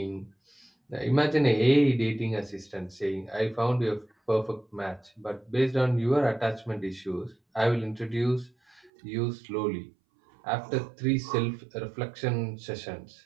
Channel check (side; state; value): left; drops out; at 8.9 s